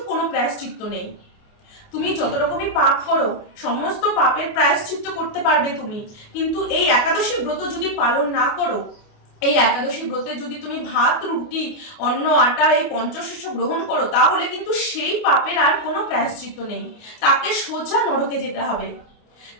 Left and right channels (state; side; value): late; right; 28 ms